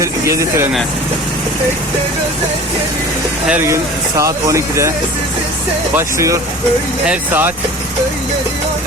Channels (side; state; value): both; normal; correlation 0.41